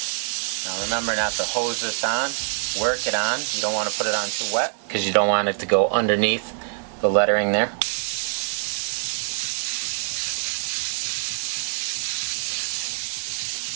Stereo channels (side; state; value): left; silent; 56 dB below the other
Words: Now remember not to hose this on, work it on. You don't want to put it on too wet because you don't want it to go underneath the lettering there.